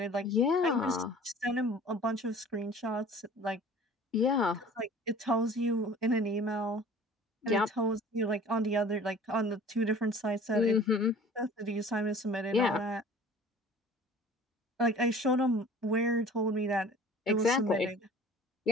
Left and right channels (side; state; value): both; normal; correlation 0.46